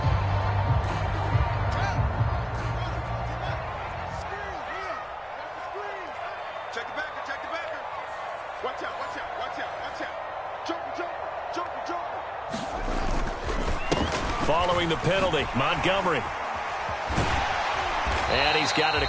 Following the penalty, Montgomery. And he's got it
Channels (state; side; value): identical; both; correlation 1.00